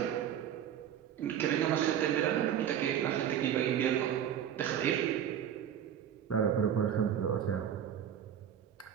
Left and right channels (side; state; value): left; quieter; 9.6 dB